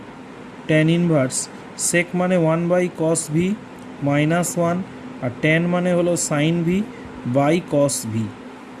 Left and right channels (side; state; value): both; identical; correlation 1.00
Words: tan inverse sec মানে 1 বাই কস ভি মাইনাস 1, আর ট্যান মানে হলো sine V by cos v.